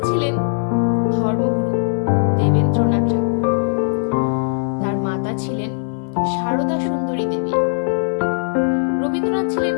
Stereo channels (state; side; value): silent; right; 66 dB below the other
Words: ছিলেন ধর্মগুরু দেবেন্দ্রনাথ ঠাকুর। তার মাতা ছিলেন সারদা সুন্দরী দেবী। রবীন্দ্রনাথ ছিলেন